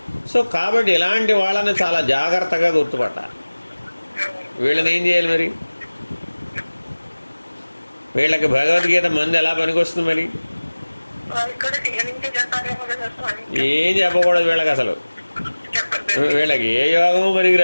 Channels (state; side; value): inverted; both; correlation -1.00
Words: సో కాబట్టి ఇలాంటి వాళ్ళని చాలా జాగ్రత్తగా గుర్తుపట్టాలి. వీళ్ళని ఏం చేయాలి మరి? వీళ్ళకి భగవద్గీత మంది ఎలా పనికొస్తుంది మరి? ఏం చెప్పకూడదు వీళ్ళకి, అసలు వీళ్ళకి ఏ యోగము